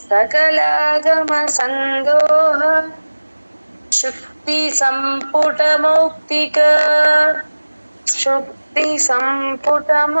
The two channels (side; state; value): both; inverted; correlation -1.00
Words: సకలాగమ సందోహ శుక్తి సంపుట మౌక్తిక శుక్తి సంపుట